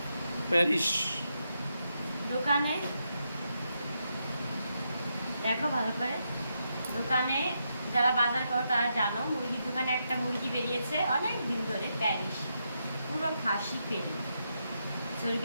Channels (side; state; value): both; inverted; correlation -0.82